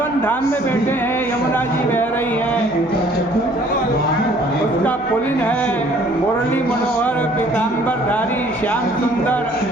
धाम में बैठे हैं, यमुना जी बह रही है, उसका पुलिन है, मुरली मनोहर, पीताम्बरधारी, श्याम सुंदर,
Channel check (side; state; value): right; noise; hum, 23 dB below the sound